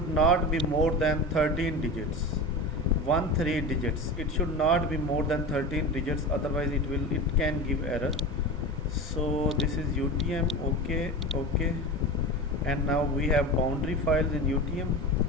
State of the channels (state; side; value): normal; both; correlation 0.28